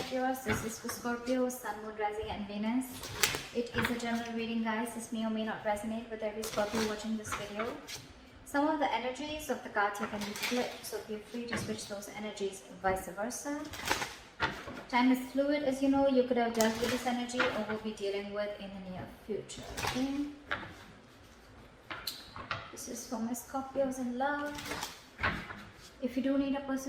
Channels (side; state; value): both; identical; correlation 1.00